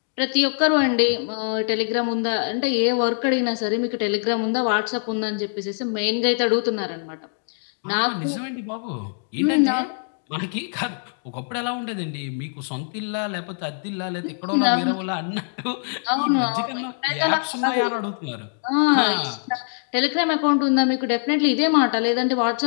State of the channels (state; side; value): silent; right; digital silence